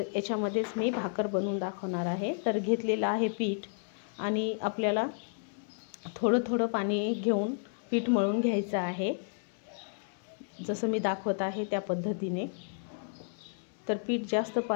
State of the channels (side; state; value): right; silent; digital silence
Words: याच्यामध्येच मी भाकर बनवून दाखवणार आहे. तर घेतलेलं आहे पीठ आणि आपल्याला थोडं थोडं पाणी घेऊन पीठ मळून घ्यायचं आहे, जसं मी दाखवत आहे त्या पद्धतीने. तर पीठ जास्त